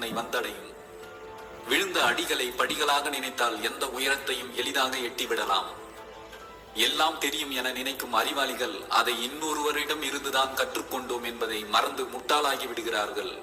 வந்தடையும். விழுந்த அடிகளை படிகளாக நினைத்தால் எந்த உயரத்தையும் எளிதாக எட்டிவிடலாம். எல்லாம் தெரியும் என நினைக்கும் அறிவாளிகள் அதை இன்னொருவரிடம் இருந்துதான் கற்றுக்கொண்டோம் என்பதை மறந்து முட்டாளாகி விடுகிறார்கள்.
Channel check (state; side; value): identical; both; correlation 1.00